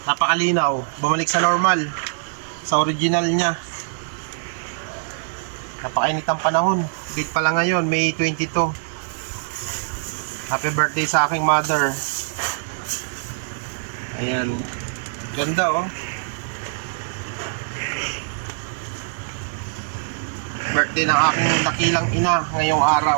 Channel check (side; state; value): left; silent; digital silence